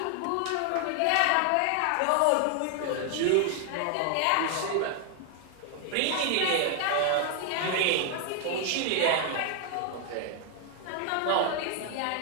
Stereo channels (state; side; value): different; both; correlation 0.00